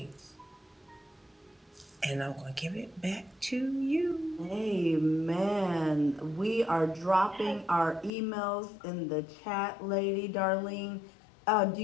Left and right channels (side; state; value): right; drops out; at 8.1 s